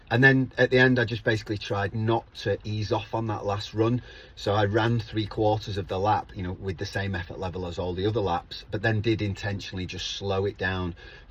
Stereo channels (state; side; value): identical; both; correlation 1.00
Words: And then at the end, I just basically tried not to ease off on that last run. So I ran 3/4 of the lap, you know, with the same effort level as all the other laps, but then did intentionally just slow it down